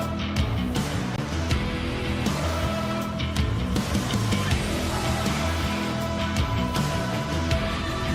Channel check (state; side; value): identical; both; correlation 1.00